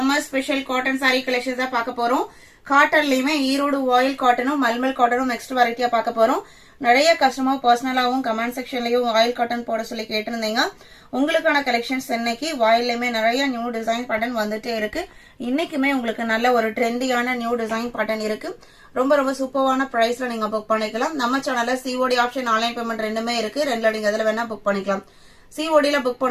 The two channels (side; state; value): both; identical; correlation 1.00